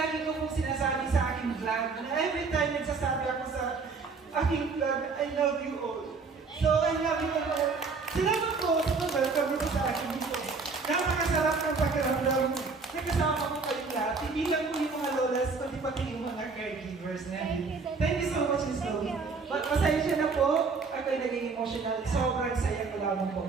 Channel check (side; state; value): left; quieter; 4.6 dB